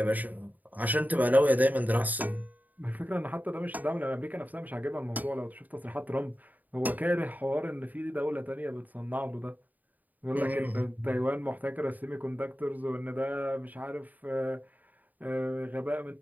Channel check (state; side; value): late; left; 0.081 ms